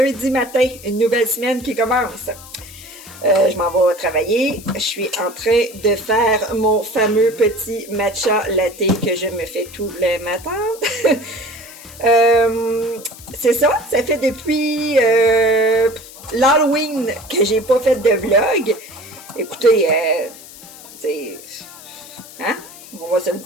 matin, une nouvelle semaine qui commence. Je m'en vais travailler. Je suis en train de faire mon fameux petit matcha latte que je me fais tous les matins. C'est ça fait depuis l'Halloween que j'ai pas fait de vlog. Écoutez, hein? On va se le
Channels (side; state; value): left; noise; hiss, 18 dB below the sound